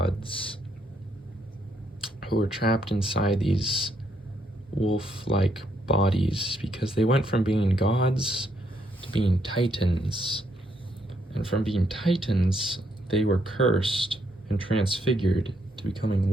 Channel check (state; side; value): normal; both; correlation 0.74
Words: who were trapped inside these wolf-like bodies because they went from being gods to being titans. And from being titans, they were cursed and transfigured to becoming